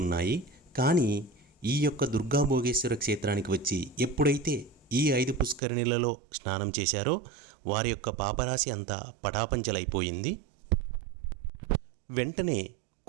ఉన్నాయి. కానీ ఈ యొక్క దుర్గా భోగేశ్వర క్షేత్రానికి వచ్చి ఎప్పుడైతే ఈ 5 పుష్కరిణులలో స్నానం చేశారో వారి యొక్క పాపరాశి అంతా పటాపంచలైపోయింది. వెంటనే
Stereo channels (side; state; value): left; drops out; at 5.6 s